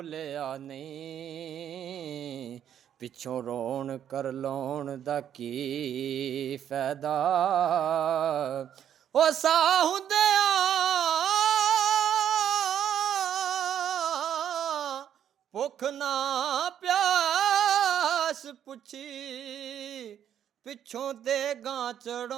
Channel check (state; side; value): quieter; left; 9.8 dB